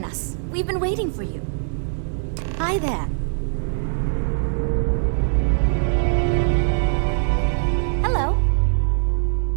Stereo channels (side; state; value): left; silent; digital silence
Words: us. We've been waiting for you. Hi there. Hello.